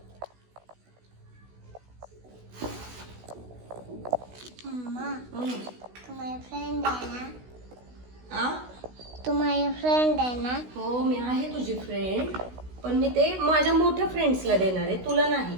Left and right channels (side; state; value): left; late; 16 ms